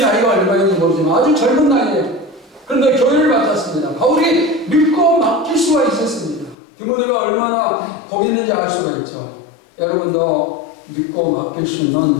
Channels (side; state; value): right; drops out; at 6.6 s